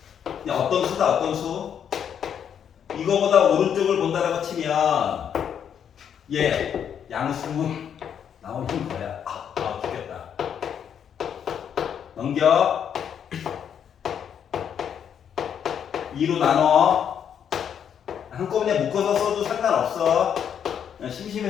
그냥 어떤 수다, 어떤 수? 이거보다 오른쪽을 본다라고 치면 얘 양수 나오는 거야. 죽겠다. 넘겨. 2로 나눠. 한꺼번에 묶어서 써도 상관없어. 그냥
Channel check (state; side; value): quieter; right; 8.4 dB